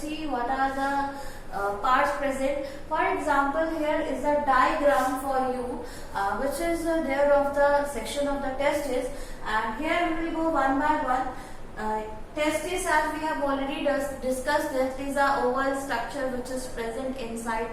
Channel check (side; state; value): both; identical; correlation 1.00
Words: what are the parts present. For example, here is a diagram for you which is there of the section of the testis, and here we will go one by one. Testis, as we have already discussed, that is a oval structure which is present inside